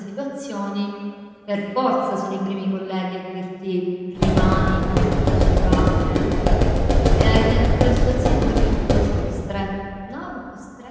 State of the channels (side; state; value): both; identical; correlation 1.00